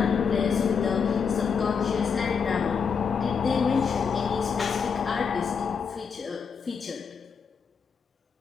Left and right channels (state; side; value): quieter; right; 6.1 dB